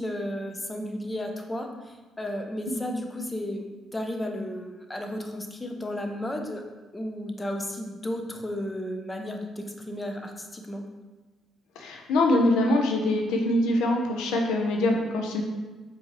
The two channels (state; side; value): normal; both; correlation 0.75